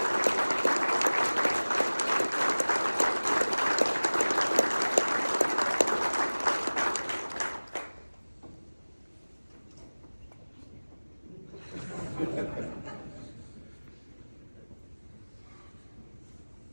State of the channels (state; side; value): inverted; both; correlation -1.00